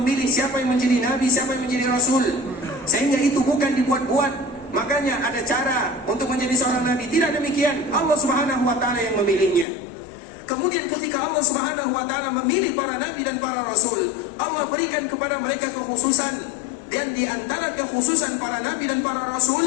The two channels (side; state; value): right; drops out; at 9.7 s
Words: siapa yang menjadi nabi, siapa yang menjadi rasul. Sehingga itu bukan dibuat-buat. Makanya ada cara untuk menjadi seorang nabi, tidak demikian. Allah Subhanahu wa taala yang memilihnya. Kemudian ketika Allah Subhanahu wa taala memilih para nabi dan para rasul, Allah berikan kepada mereka kekhususan. Dan di antara kekhususan para nabi dan para